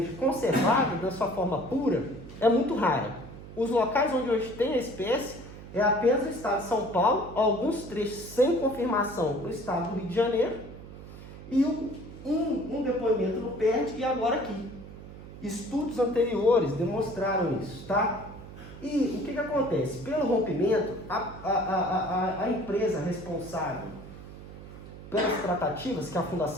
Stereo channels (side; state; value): right; noise; hum, 15 dB below the sound